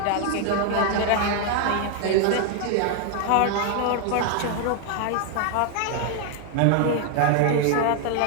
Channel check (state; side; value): different; both; correlation 0.00